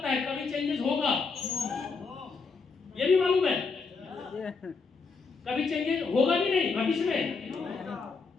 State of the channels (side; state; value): right; quieter; 4.6 dB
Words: है कभी चेंजेस होगा? ये भी मालूम है कभी चेंजेस होगा भी नहीं भविष्य में।